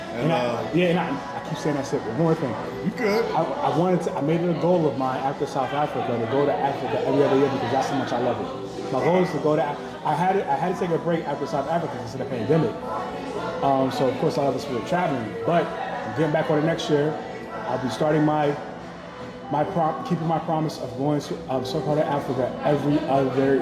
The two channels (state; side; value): identical; both; correlation 1.00